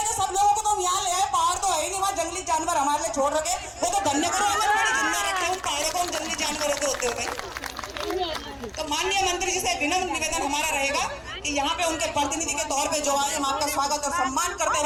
सब लोगों को तो यहाँ ले आए। पहाड़ तो है ही नहीं, वहाँ जंगली जानवर हमारे लिए छोड़ रखे, वो तो धन्य करो आंगनबाड़ी जिंदा रखे, उन पहाड़ों को, उन जंगली जानवरों के होते हुए। तो माननीय मंत्री जी से विनम्र निवेदन हमारा रहेगा कि यहाँ पे उनके प्रतिनिधि के तौर पे जो आए, हम आपका स्वागत और सम्मान करते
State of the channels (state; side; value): identical; both; correlation 1.00